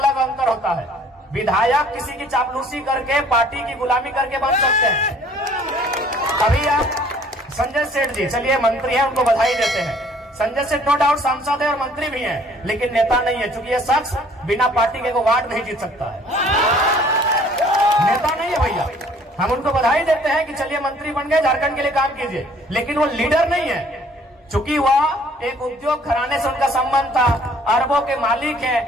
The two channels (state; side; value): normal; both; correlation 0.57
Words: अंतर होता है। विधायक किसी की चापलूसी करके, पार्टी की गुलामी करके बन सकते हैं। अभी आप संजय सेठ जी, चलिए मंत्री हैं, उनको बधाई देते हैं। संजय सेठ नो डाउट सांसद है और मंत्री भी हैं, लेकिन नेता नहीं है, क्योंकि ये शख्स बिना पार्टी के वार्ड नहीं जीत सकता है। नेता नहीं है भैया। हम उनको बधाई देते हैं कि चलिए मंत्री बन गए, झारखंड के लिए काम कीजिए, लेकिन वो लीडर नहीं है। चूंकि वह एक उद्योग घराने से उनका संबंध था, अरबों के मालिक